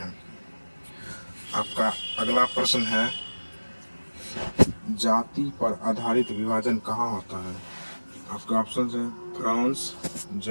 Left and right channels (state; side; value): inverted; both; correlation -1.00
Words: आपका अगला प्रश्न है, जाति पर आधारित विभाजन कहाँ होता है? आपका ऑप्शन है फ्रांस,